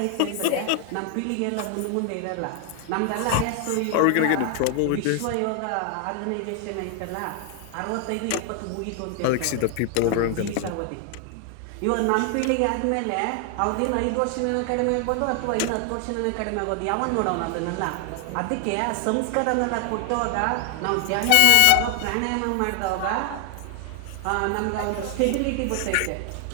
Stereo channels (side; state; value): both; different; correlation 0.00